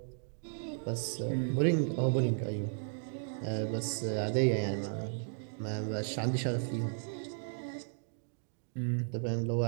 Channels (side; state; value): left; silent; digital silence